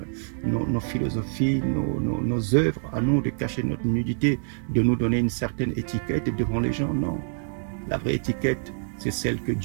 nos philosophies, nos œuvres, à nous de cacher notre nudité, de nous donner une certaine étiquette devant les gens. Non. La vraie étiquette, c'est celle que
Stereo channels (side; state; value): left; silent; digital silence